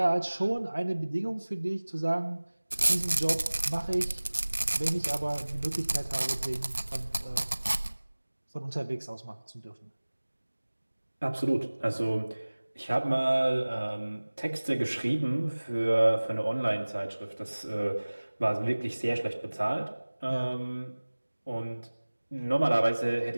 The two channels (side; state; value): both; inverted; correlation -1.00